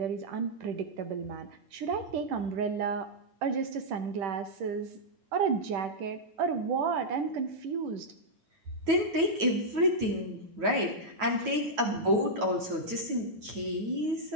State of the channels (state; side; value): late; left; 9.3 ms